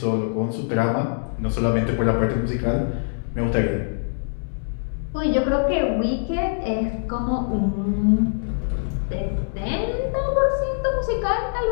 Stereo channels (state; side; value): silent; right; digital silence